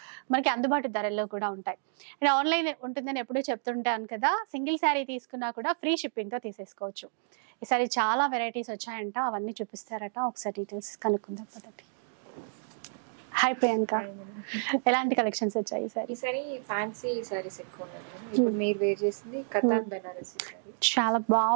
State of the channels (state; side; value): silent; left; digital silence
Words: మనకి అందుబాటు ధరల్లో కూడా ఉంటాయి. అండ్ ఆన్లైన్ ఉంటుందని ఎప్పుడూ చెప్తుంటాను కదా, సింగిల్ శారీ తీసుకున్నా కూడా ఫ్రీ షిప్పింగ్ తో తీసేసుకోవచ్చు. ఈసారి చాలా వెరైటీస్ వచ్చాయంట, అవన్నీ చూపిస్తారట. ఒకసారి డీటెయిల్స్ కనుక్కుందాం పదండి. హాయ్ ప్రియాంక, ఎలాంటి కలెక్షన్స్ వచ్చాయి ఈసారి? ఫ్యాన్సీ సారీస్ ఎక్కువ ఇప్పుడు మీరు వేర్ చేసింది కతార్ బనారసి సారీ. చాలా